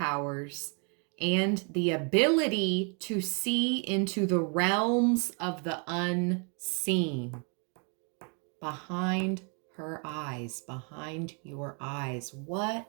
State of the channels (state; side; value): quieter; left; 37.4 dB